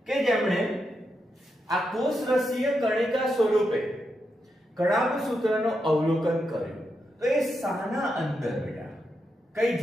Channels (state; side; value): normal; both; correlation 0.84